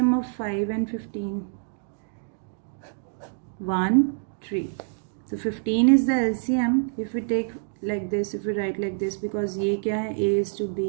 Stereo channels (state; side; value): silent; left; digital silence